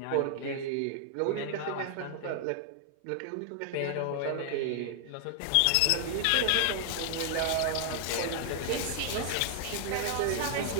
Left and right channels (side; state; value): both; different; correlation -0.01